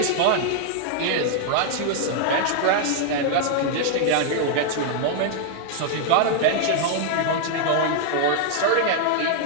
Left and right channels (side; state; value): both; different; correlation 0.00